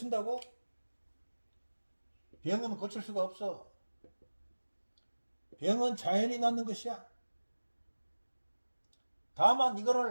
병은 고칠 수가 없어. 병은 자연히 낫는 것이야. 다만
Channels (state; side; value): inverted; both; correlation -1.00